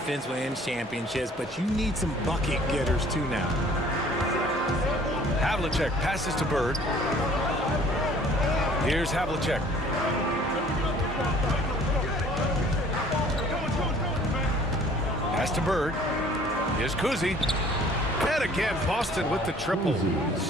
wins championships, but you need some bucket getters too now. Havlicek passes to Bird. Here's Havlicek. Pass to Bird. Here's Kuzi. And again, Boston with the triple.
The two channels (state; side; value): normal; both; correlation 0.54